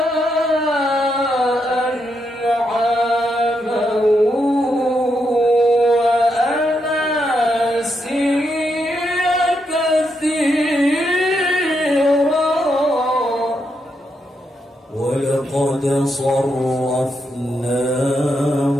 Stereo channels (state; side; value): normal; both; correlation 0.81